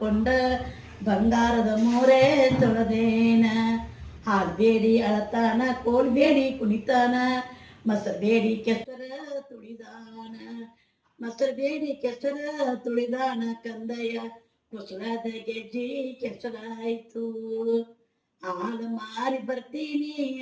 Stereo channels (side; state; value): both; identical; correlation 1.00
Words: ಬಂಗಾರದ ಮೋರೆ ತೊಳೆದೇನ ಹಾಡ್ಬೇಡಿ ಅಳತಾನ ಕೋಲ್ಬೇಡಿ ಕುಣಿತಾನ ಮಸಬೇಡಿ ಕೆಸರ ತುಳಿದಾನ ಮಸಬೇಡಿ ಕೆಸರ ತುಳಿದಾನ ಕಂದಯ್ಯ ಕುಸಳದ ಗೆಜ್ಜಿ ಕೆಸರಾಯ್ತು ಹಾಲು ಮಾರಿ ಬರ್ತೀನಿ